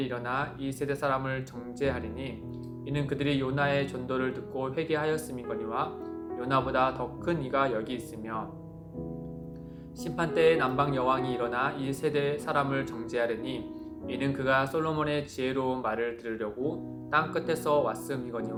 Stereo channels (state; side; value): identical; both; correlation 1.00